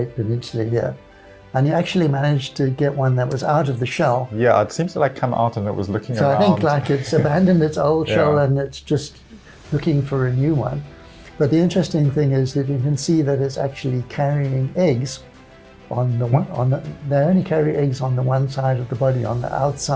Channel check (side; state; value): both; identical; correlation 1.00